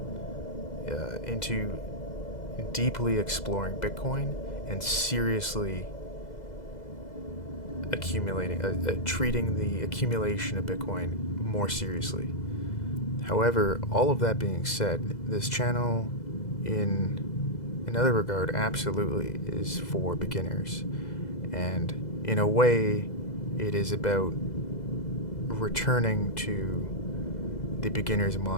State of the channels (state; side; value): late; right; 2.0 ms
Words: deeply exploring Bitcoin and seriously treating the accumulation of Bitcoin more seriously. However, all of that being said, this channel, in another regard, absolutely is for beginners. And in a way, it is about returning to the beginner's